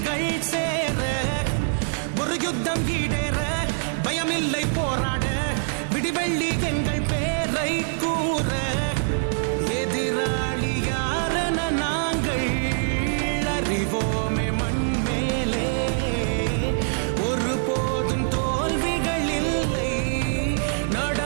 சேர ஒரு யுத்தம் ஈடேற பயமில்லை போராட விடிவெள்ளி எங்கள் பேரை கூற எதிராளி யாரென நாங்கள் அறிவோமே மண் மேலே ஒரு போதும் தோல்விகள் இல்லை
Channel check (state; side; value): silent; left; 62 dB below the other